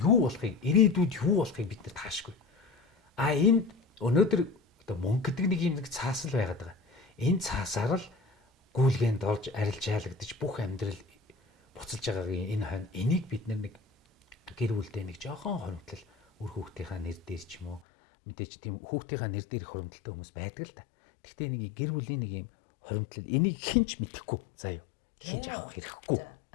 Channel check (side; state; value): right; drops out; at 17.8 s